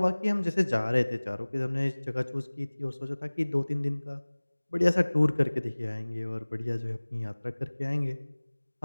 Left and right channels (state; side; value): inverted; both; correlation -1.00